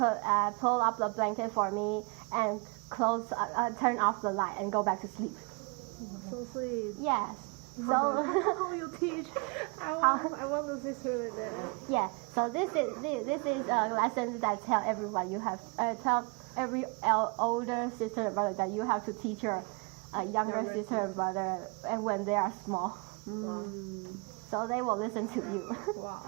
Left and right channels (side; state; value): left; quieter; 30.8 dB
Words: pull up the blanket for me and turn off the light and go back to sleep. Oh, so sweet. Yes. So how you teach? I want a sister like that. yeah. So this is a lesson that tell everyone you have tell every older sister and brother that you have to teach your younger sister and brother, and when they are small, so they will listen to you. Wow.